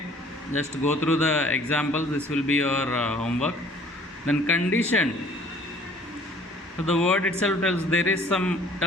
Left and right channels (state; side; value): normal; both; correlation 0.54